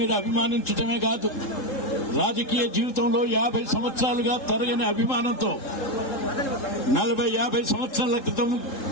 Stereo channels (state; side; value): late; right; 3.7 ms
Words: అభిమానించడమే కాదు, రాజకీయ జీవితంలో 50 సంవత్సరాలుగా తరగని అభిమానంతో 40-50 సంవత్సరాల క్రితం